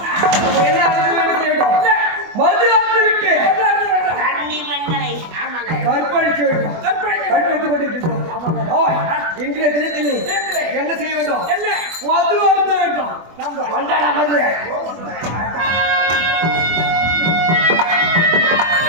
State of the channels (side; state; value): left; late; 24 ms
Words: இன்றைய தினத்தில் என்ன செய்ய வேண்டும் மது அருந்த வேண்டும் நம்ம கொண்டாட மது